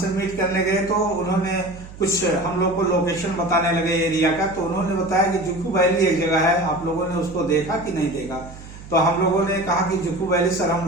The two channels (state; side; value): noise; right; hum, 16 dB below the sound